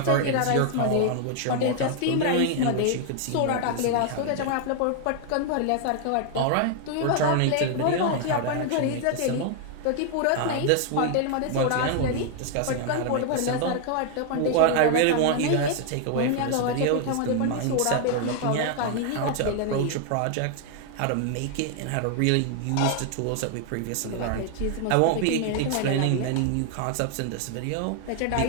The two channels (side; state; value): both; different; correlation 0.00